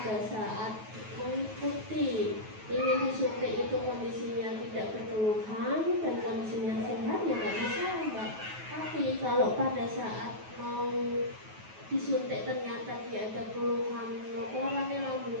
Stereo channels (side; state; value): left; late; 9.3 ms